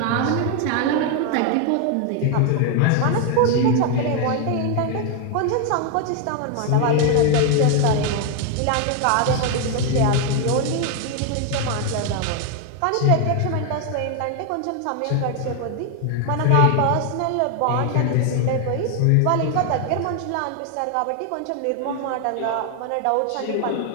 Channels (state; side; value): different; both; correlation 0.01